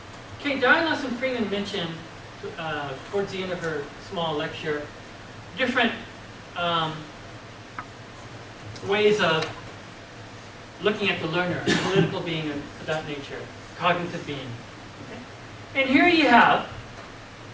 Diane and Freeman mentioned towards the end of her small lecture different ways of looking at the learner, political being of that nature, cognitive being. Okay? And here you have,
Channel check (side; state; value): both; identical; correlation 1.00